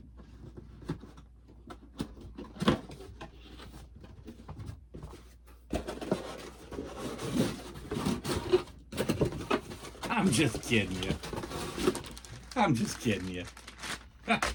I'm just kidding you. I'm just kidding you.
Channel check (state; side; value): identical; both; correlation 1.00